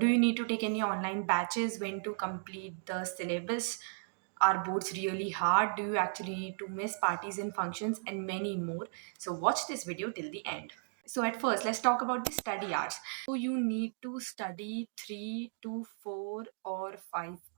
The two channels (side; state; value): left; silent; digital silence